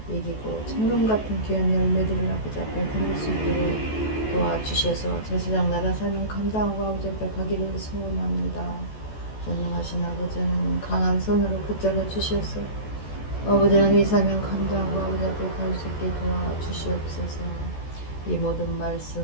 이기고 천금 같은 귀한 열매들을 아버지 앞에 드릴 수 있도록 도와주셔서 제사장 나라 사명 감당하고 아버지 앞에 가기를 소원합니다. 전능하신 아버지 하나님, 강한 손으로 붙잡아 주셔서 아버지 하나님 이 사명 감당하고 아버지 앞에 갈 수 있게 도와주시옵소서. 이 모든 말씀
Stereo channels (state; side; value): late; right; 14 ms